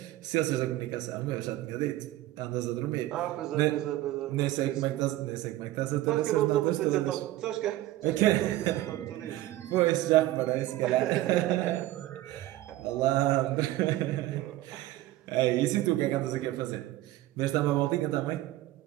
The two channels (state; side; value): quieter; left; 15.7 dB